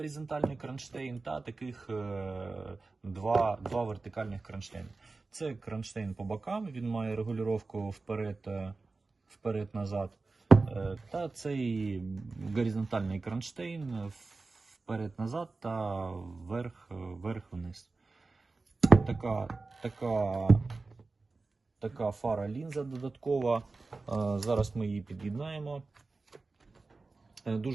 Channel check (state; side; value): quieter; left; 3.7 dB